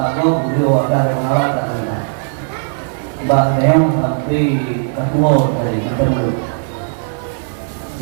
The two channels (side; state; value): left; silent; 63 dB below the other